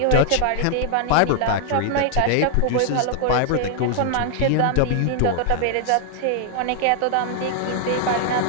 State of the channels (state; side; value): different; both; correlation 0.00